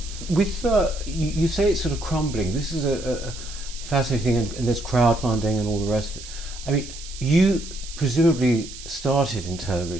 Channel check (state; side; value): noise; right; hiss, 14 dB below the sound